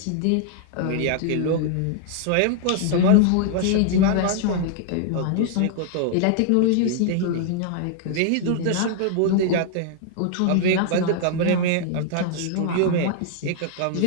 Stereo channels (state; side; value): different; both; correlation -0.01